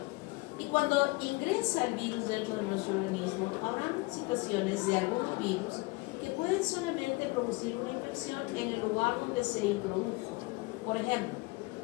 Y cuando ingresa el virus dentro de nuestro organismo, habrá situaciones de algunos virus que pueden solamente producir una infección en el lugar donde se introdujo. Por ejemplo,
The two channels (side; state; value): right; quieter; 24.6 dB